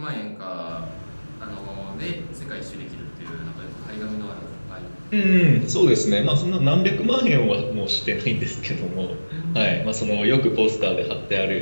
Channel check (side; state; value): both; inverted; correlation -1.00